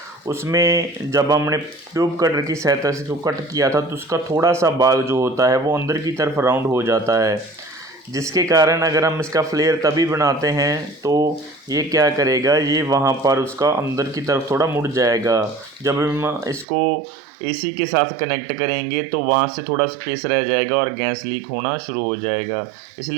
उसमें जब हमने ट्यूब कटर की सहायता से इसको कट किया था तो उसका थोड़ा सा भाग जो होता है वो अंदर की तरफ राउंड हो जाता है, जिसके कारण अगर हम इसका फ्लेयर तभी बनाते हैं तो ये क्या करेगा, ये वहाँ पर उसका अंदर की तरफ थोड़ा मुड़ जाएगा। जब हम इसको एसी के साथ कनेक्ट करेंगे तो वहाँ से थोड़ा स्पेस रह जाएगा और गैस लीक होना शुरू हो जाएगा।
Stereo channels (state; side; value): drops out; left; at 16.7 s